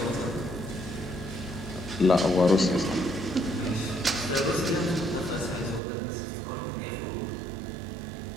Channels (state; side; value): drops out; left; at 5.8 s